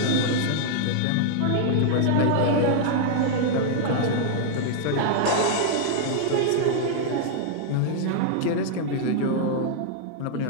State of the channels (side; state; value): both; different; correlation -0.01